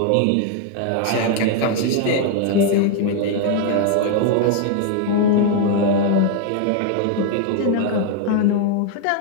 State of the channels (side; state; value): both; different; correlation 0.01